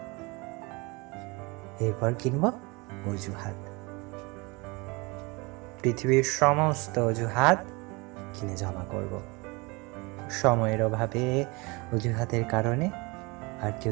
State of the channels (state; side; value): quieter; left; 26.6 dB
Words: এরপর কিনব অজুহাত। পৃথিবীর সমস্ত অজুহাত কিনে জমা করব। সময়ের অভাবে, অজুহাতের কারণে আর